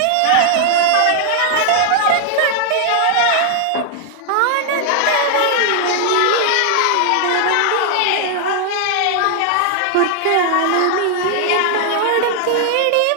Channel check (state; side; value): different; both; correlation 0.00